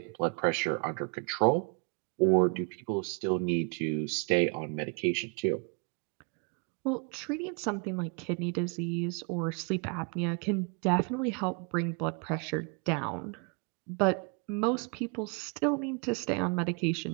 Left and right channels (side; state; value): left; quieter; 36.0 dB